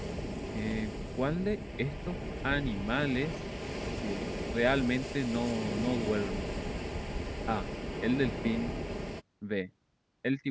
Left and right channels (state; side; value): identical; both; correlation 1.00